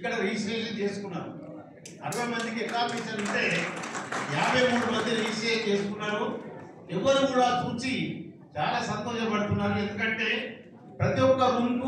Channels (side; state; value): both; identical; correlation 1.00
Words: రిజిస్ట్రేషన్ చేసుకున్నారు. 60 మందికి అకామిడేషన్ ఉంటే 53 మంది రిజిస్ట్రేషన్ చేసుకున్నారు. ఎవరు కూడా చూసి చాలా సంతోషపడుతున్నారు. ఎందుకంటే ప్రతి ఒక్క రూమ్